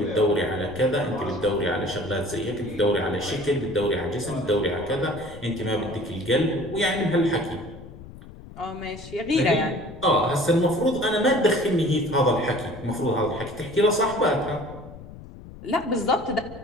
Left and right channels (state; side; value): noise; left; rumble, 16 dB below the sound